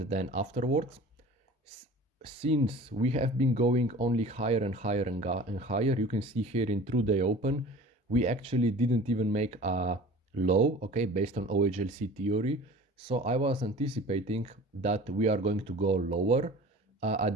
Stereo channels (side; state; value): both; normal; correlation 0.41